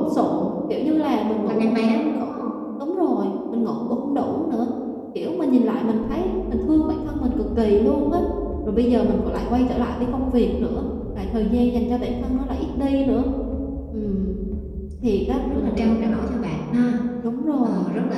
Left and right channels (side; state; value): both; identical; correlation 1.00